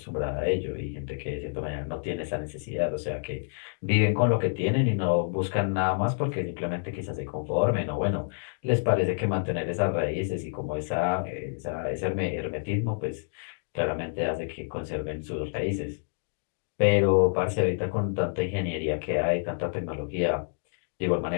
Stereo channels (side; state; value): right; silent; digital silence